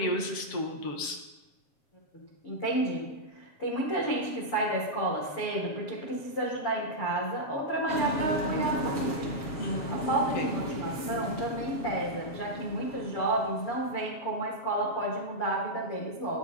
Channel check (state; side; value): late; right; 7.3 ms